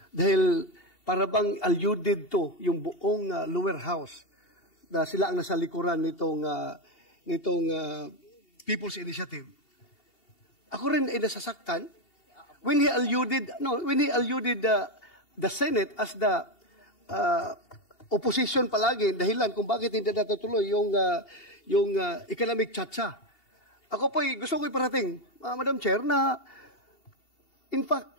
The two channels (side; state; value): right; late; 2.8 ms